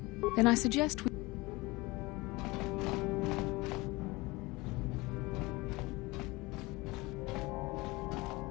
Then I suggest we...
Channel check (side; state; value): right; quieter; 22.7 dB